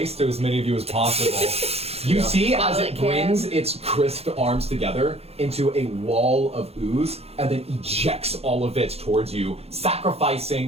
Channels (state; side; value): late; left; 0.29 ms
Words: to as many of you as possible. You see as it brings its crisp arms together into a wall of ooze and then ejects all of it towards you,